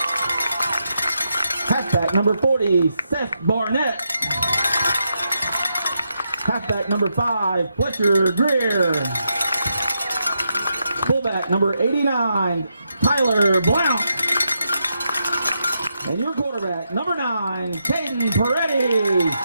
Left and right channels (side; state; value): both; inverted; correlation -0.83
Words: Halfback, number 40, Seth Barnett. Halfback, number 5, Fletcher Greer. Fullback, number 89, Tyler Blount. And your quarterback, number 9, Caden Peretti.